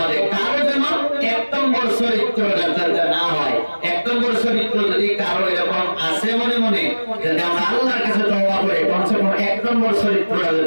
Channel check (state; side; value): inverted; both; correlation -1.00